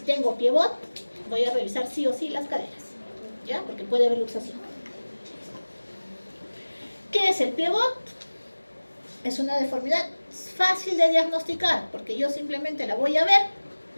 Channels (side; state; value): both; inverted; correlation -1.00